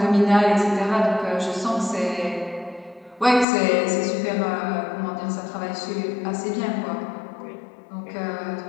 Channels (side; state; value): right; drops out; at 3.5 s